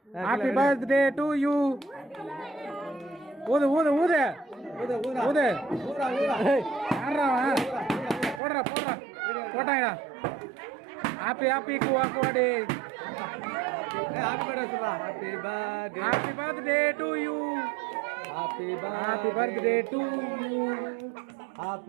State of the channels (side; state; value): left; drops out; at 8.4 s